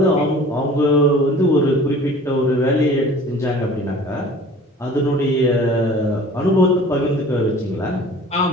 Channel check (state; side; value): normal; both; correlation 0.46